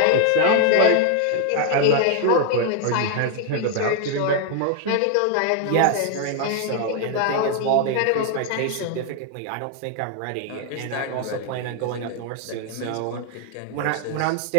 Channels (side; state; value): both; different; correlation 0.00